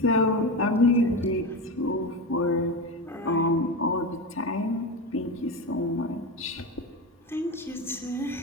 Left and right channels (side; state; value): both; normal; correlation 0.20